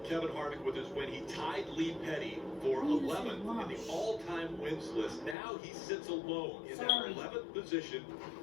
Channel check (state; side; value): drops out; right; at 5.4 s